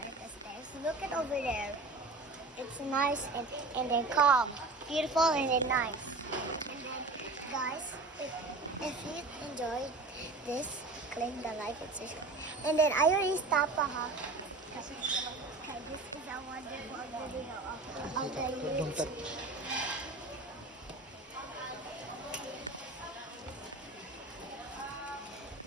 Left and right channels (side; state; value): left; quieter; 3.3 dB